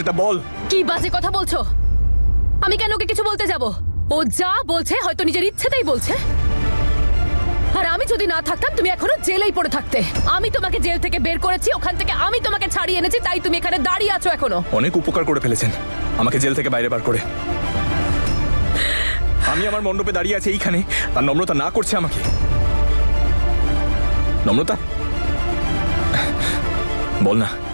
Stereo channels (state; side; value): inverted; both; correlation -1.00